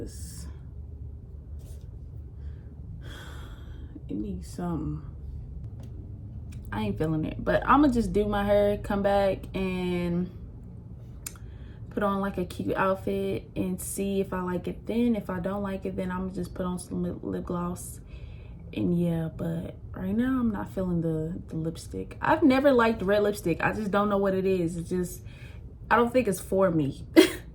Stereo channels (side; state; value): both; identical; correlation 1.00